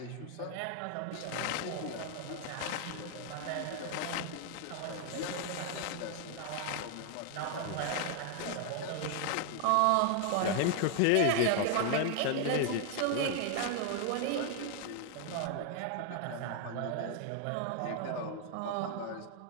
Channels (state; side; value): different; both; correlation 0.00